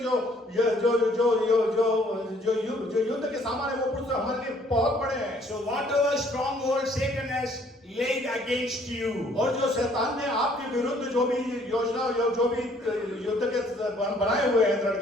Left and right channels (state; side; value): normal; both; correlation 0.62